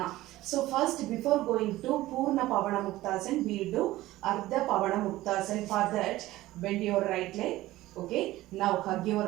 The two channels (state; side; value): quieter; left; 16.7 dB